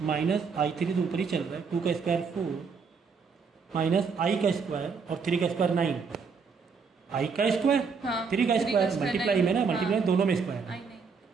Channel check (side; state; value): left; quieter; 5.5 dB